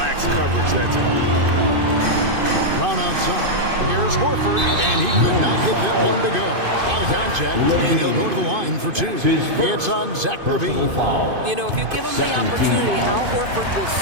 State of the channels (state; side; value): late; left; 2.5 ms